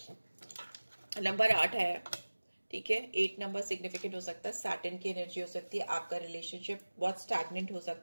नंबर 8 है, ठीक है। 8 नंबर सिग्निफिकेंट हो सकता है, सैटर्न की एनर्जी हो सकती है, आपका रिलेशनशिप बहुत स्टैग्नेंट हो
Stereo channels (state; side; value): inverted; both; correlation -1.00